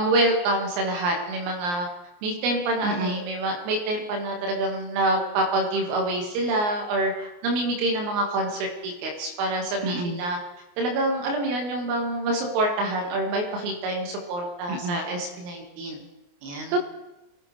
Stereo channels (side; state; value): left; late; 29 ms